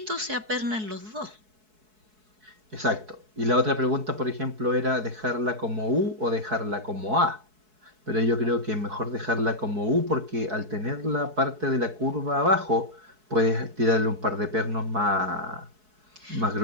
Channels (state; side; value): late; left; 4.7 ms